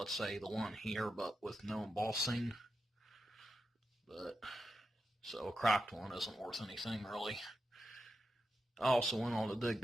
say the one here, but with no embossing. But so a cracked one isn't worth anything really. I also went on a dig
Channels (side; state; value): both; normal; correlation 0.88